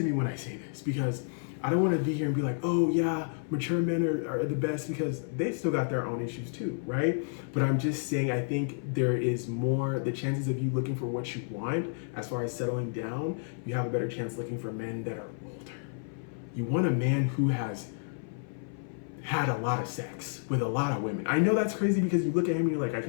me when I say this, because I don't want to be here and be like, oh yeah, mature men are the best, because they still got their own issues too, right? But I'm just saying, I think there is more, the chances of you looking for what you want as far as settling down, you have a better chance looking for men that are older. You want a man who has had a lot of sex with a lot of women. I know that's crazy because you look at him and you're like, I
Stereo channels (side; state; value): right; silent; 56 dB below the other